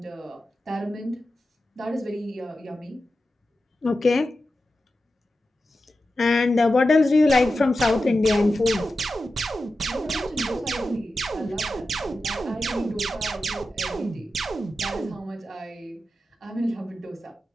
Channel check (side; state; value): both; normal; correlation 0.92